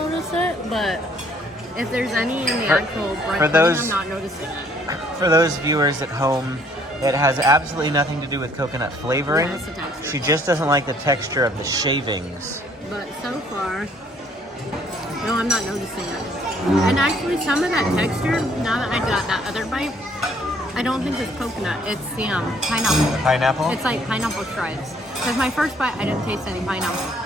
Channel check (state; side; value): normal; both; correlation 0.63